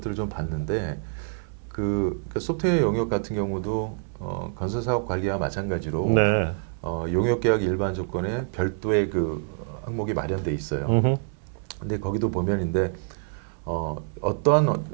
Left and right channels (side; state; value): left; silent; 57 dB below the other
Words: 좀 봤는데 그러니까 소프트웨어 영역 같은 경우도 건설 사업 관리와 마찬가지로 용역 계약 일반 조건에 별도의 그 항목이 마련돼 있어요. 근데 거기도 보면인데